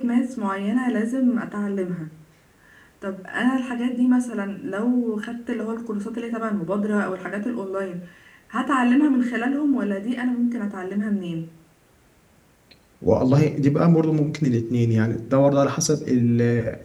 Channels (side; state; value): both; identical; correlation 1.00